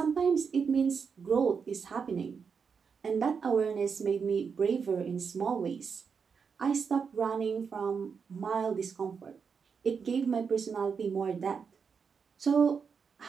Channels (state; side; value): quieter; left; 6.0 dB